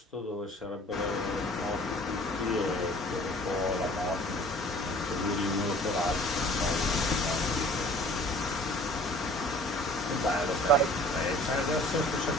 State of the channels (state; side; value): normal; both; correlation 0.50